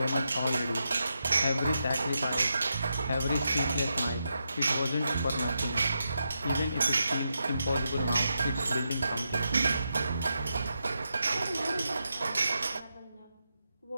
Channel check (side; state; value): both; inverted; correlation -0.85